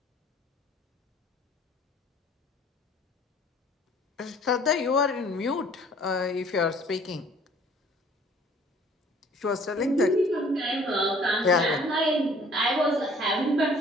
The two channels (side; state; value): both; normal; correlation 0.55